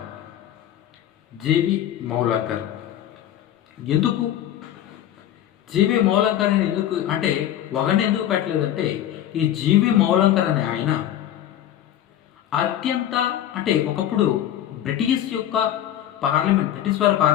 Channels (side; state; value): right; quieter; 11.6 dB